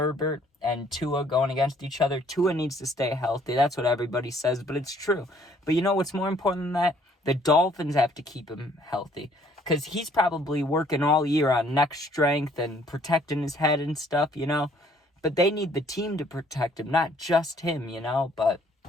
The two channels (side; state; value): both; normal; correlation 0.61